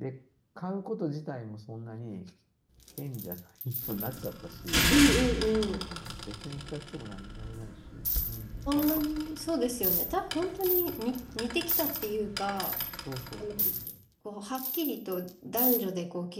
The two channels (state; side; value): identical; both; correlation 1.00